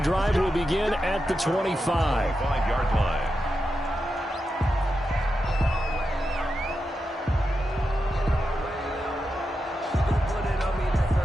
will begin at the 25. 5-yard line.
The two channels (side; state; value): both; normal; correlation 0.88